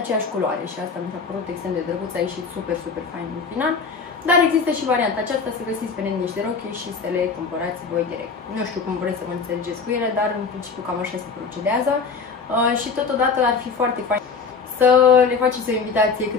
culoare și asta mi s-a părut extrem de drăguț, a ieșit super fain în final. Dar există și varianta aceasta să găsiți pe net niște rochii și să le cumpărați voi direct. Nu știu cum vreți să vă înțelegeți cu ele, dar în principiu cam așa se procedează și totodată ar fi foarte fain să le faceți o invitație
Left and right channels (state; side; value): quieter; right; 5.1 dB